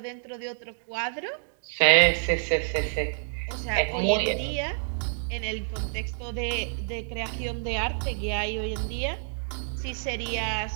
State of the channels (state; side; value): silent; left; digital silence